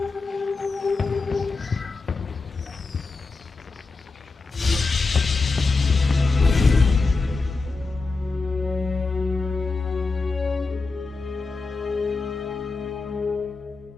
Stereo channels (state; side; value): quieter; right; 3.9 dB